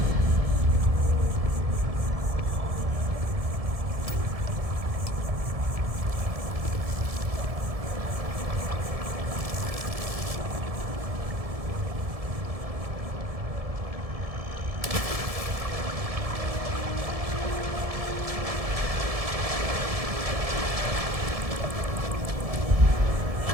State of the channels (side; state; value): left; late; 1.7 ms